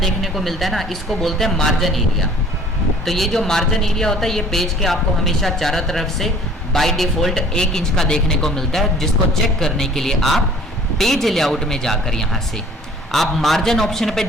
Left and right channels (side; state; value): both; normal; correlation 0.52